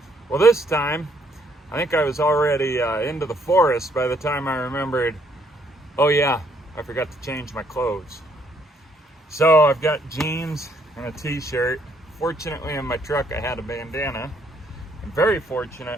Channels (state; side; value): normal; both; correlation 0.68